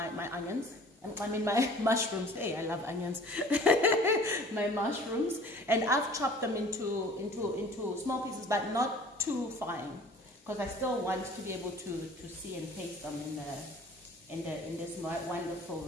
onions. I mean my mushrooms. Hey, I love onions. My mushrooms, and I've chopped them into small pieces, but not too fine, because I still want to be able to see and taste them in this wonderful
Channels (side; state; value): both; normal; correlation 0.48